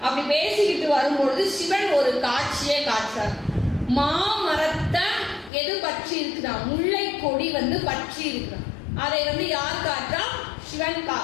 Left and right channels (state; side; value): drops out; right; at 5.5 s